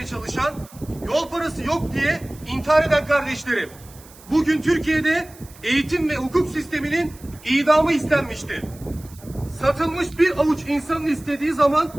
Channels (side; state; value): right; noise; hiss, 23 dB below the sound